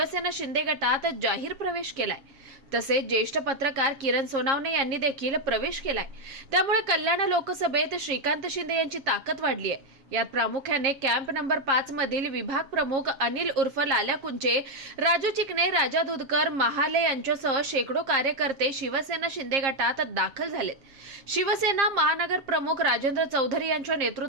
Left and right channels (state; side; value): late; left; 7.4 ms